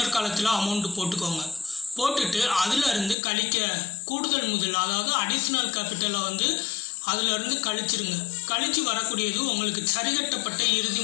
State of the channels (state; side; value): drops out; right; at 3.2 s